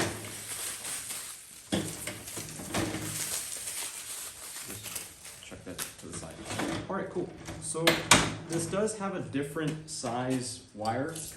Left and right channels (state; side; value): identical; both; correlation 1.00